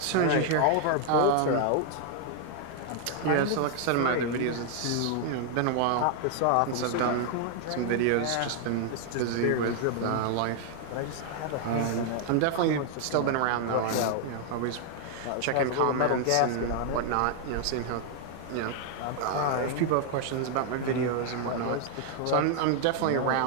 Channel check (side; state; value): both; different; correlation 0.00